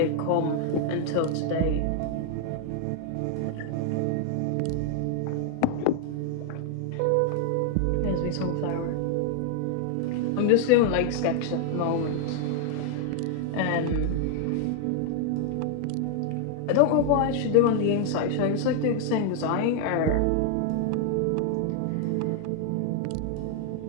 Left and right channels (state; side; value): different; both; correlation 0.00